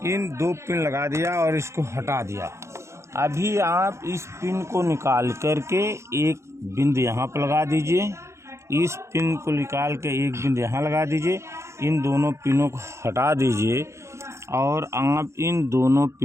इन 2 पिन लगा दिया और इसको हटा दिया। अभी आप इस पिन को निकाल करके एक बिंदु यहाँ पर लगा दीजिए, इस पिन को निकाल के एक बिंदु यहाँ लगा दीजिए, इन दोनों पिनों को हटा दीजिए, और आप इन दोनों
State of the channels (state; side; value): late; left; 0.14 ms